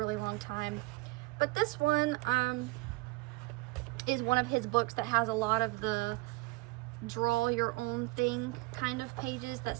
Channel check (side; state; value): left; quieter; 22.6 dB